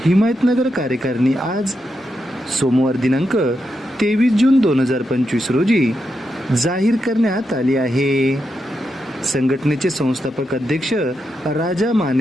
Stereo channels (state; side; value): normal; both; correlation 0.85